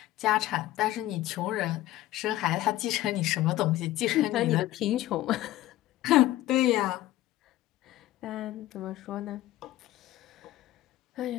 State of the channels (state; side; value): quieter; right; 15.2 dB